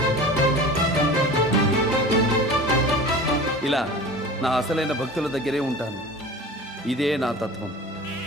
ఇలా నా అసలైన భక్తుల దగ్గరే ఉంటాను. ఇదే నా తత్వం.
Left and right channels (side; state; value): both; normal; correlation 0.37